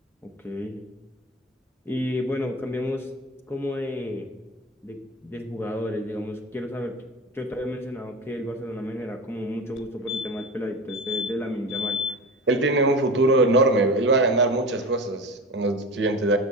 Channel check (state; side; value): normal; both; correlation 0.31